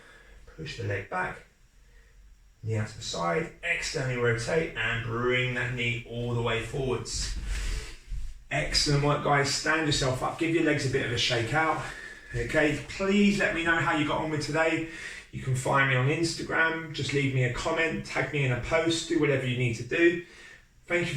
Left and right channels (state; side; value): identical; both; correlation 1.00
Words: push the leg back, knee out to the side, externally rotate, and bring that knee all the way forwards. Excellent work, guys. Stand yourself up, give your legs a bit of a shake out. Okay, please let me know how you got on with today. You can find me on Instagram, just leave me a comment, tag me in a post, do whatever you need to do. Thank